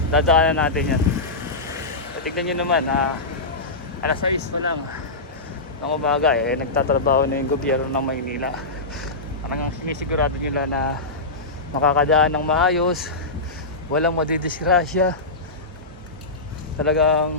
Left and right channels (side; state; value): right; quieter; 3.1 dB